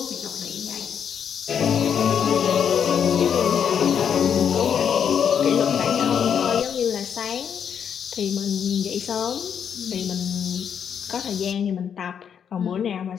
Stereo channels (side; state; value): right; quieter; 7.9 dB